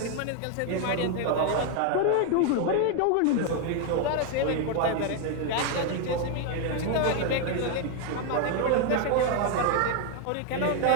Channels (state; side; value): different; both; correlation 0.01